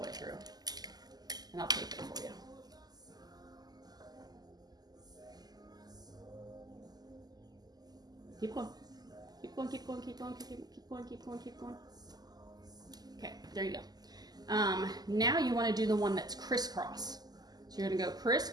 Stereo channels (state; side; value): late; left; 0.20 ms